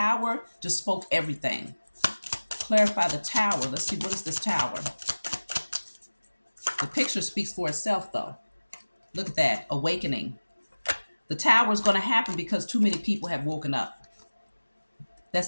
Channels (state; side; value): inverted; both; correlation -1.00